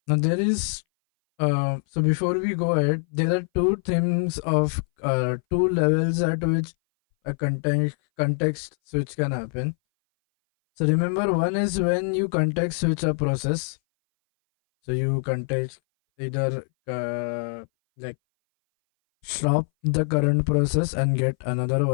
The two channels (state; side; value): silent; right; 60 dB below the other